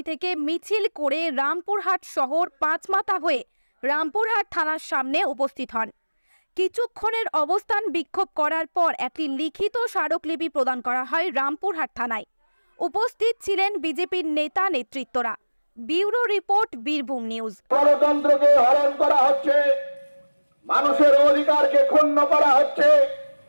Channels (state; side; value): inverted; both; correlation -1.00